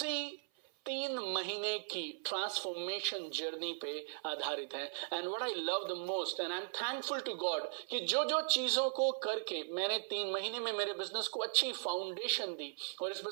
3 महीने की ट्रांसफॉर्मेशन जर्नी पे आधारित है। And what I love the most and I am thankful to God कि जो जो चीजों को करके मैंने 3 महीने में मेरे बिजनेस को अच्छी फाउंडेशन दी और इस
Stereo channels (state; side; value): silent; left; 52 dB below the other